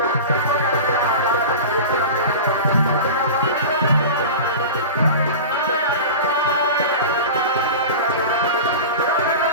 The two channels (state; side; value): inverted; both; correlation -0.30